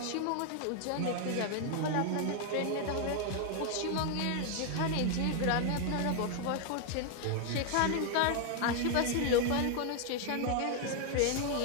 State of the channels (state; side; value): different; both; correlation 0.00